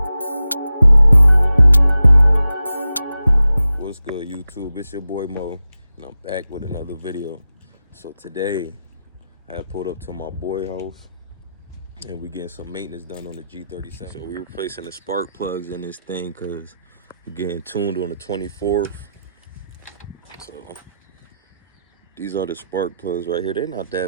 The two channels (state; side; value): inverted; both; correlation -0.90